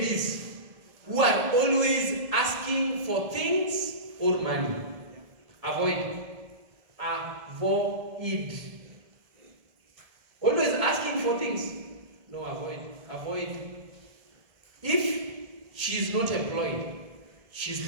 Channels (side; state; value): left; late; 1.7 ms